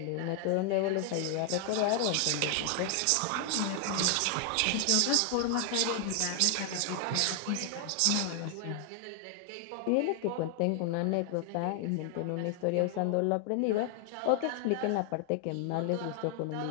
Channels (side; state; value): both; different; correlation 0.00